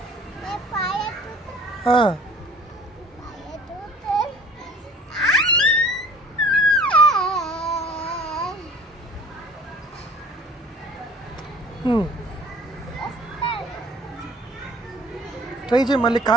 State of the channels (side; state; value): both; normal; correlation 0.48